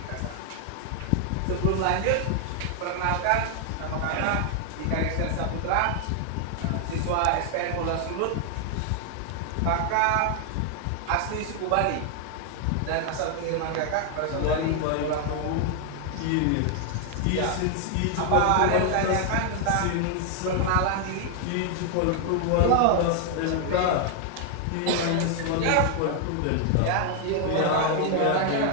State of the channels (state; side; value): different; both; correlation 0.00